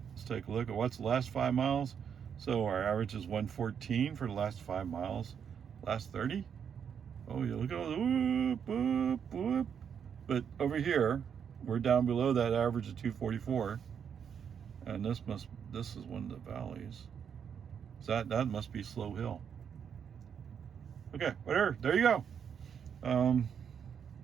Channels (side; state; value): left; quieter; 7.6 dB